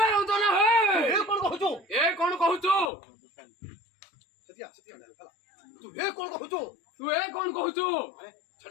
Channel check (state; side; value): drops out; right; at 2.9 s